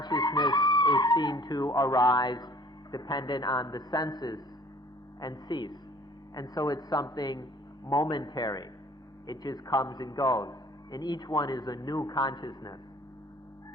is seen to arise dependent on the senses and cease. And so it's something momentary. It just comes and goes. And each one is a new consciousness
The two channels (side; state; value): both; normal; correlation 0.53